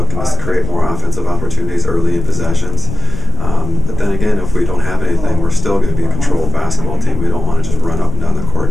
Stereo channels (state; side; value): noise; left; rumble, 2 dB below the sound